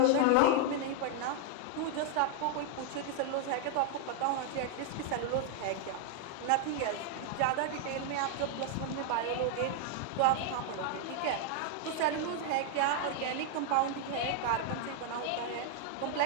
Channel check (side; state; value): both; different; correlation 0.00